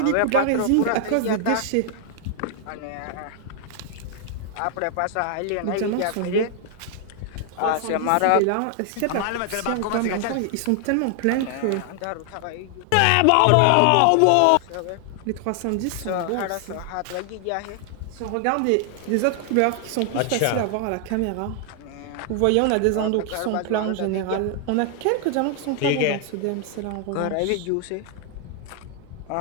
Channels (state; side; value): different; both; correlation 0.00